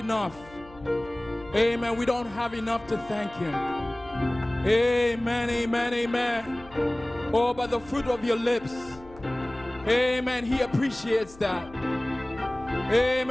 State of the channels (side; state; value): left; noise; hum, 22 dB below the sound